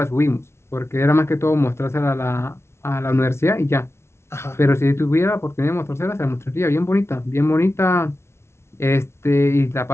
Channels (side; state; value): right; late; 0.13 ms